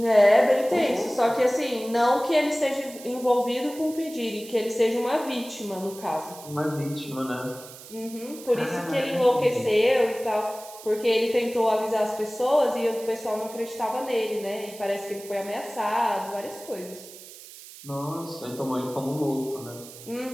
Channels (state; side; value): noise; right; hiss, 17 dB below the sound